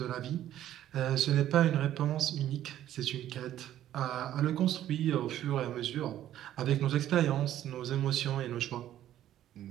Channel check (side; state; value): left; quieter; 12.2 dB